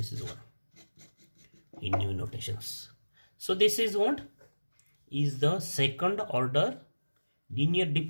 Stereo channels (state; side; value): inverted; both; correlation -1.00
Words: is 1 in new notations. So this is what is the second order linear